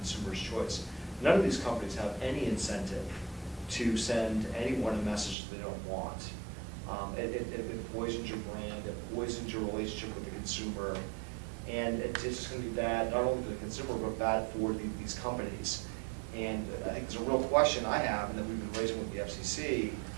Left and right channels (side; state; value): left; drops out; at 5.4 s